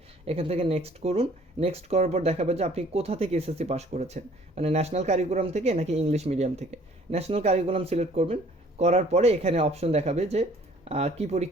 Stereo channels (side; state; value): both; normal; correlation 0.56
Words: এখান থেকে নেক্সট করুন। নেক্সট করার পর দেখাবে যে আপনি কোথা থেকে এসএসসি পাস করেছেন, মানে ন্যাশনাল কারিকুলাম থেকে নাকি ইংলিশ মিডিয়াম থেকে। ন্যাশনাল কারিকুলাম সিলেক্ট করবেন। করার পরে এখানে অপশন দেখাবে যে কি